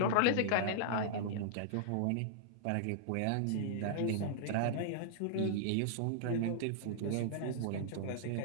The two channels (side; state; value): both; different; correlation -0.02